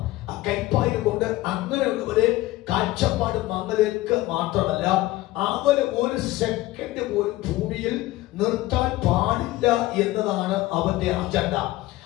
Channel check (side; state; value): right; quieter; 17.5 dB